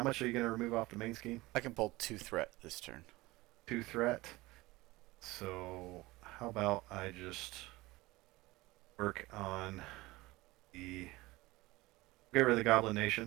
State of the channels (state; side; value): quieter; left; 20.4 dB